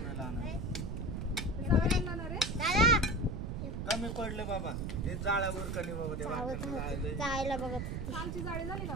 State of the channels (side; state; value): right; noise; rumble, 3 dB below the sound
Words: कमी पडले बाबा ते जाळ्यावर कणी बाबा ते जायला बघत कालची जाळी झाली का